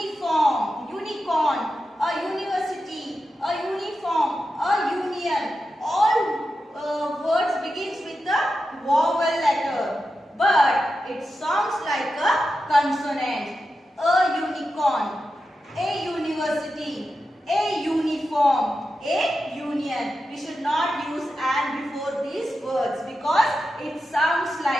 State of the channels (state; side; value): normal; both; correlation 0.90